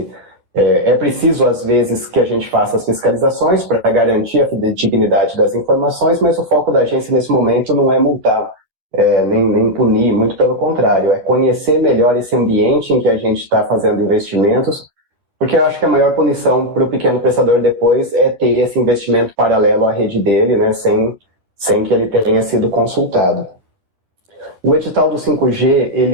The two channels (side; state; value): left; late; 11 ms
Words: é preciso, às vezes, que a gente faça as fiscalizações para garantir a fidedignidade das informações, mas o foco da agência, nesse momento, não é multar, nem punir, muito pelo contrário, é conhecer melhor esse ambiente em que a gente está fazendo investimentos, porque eu acho que a maior punição para o pequeno prestador depois é ter esse investimento paralelo à rede dele, né, sem que ele tenha sido consultado. O edital do 5G,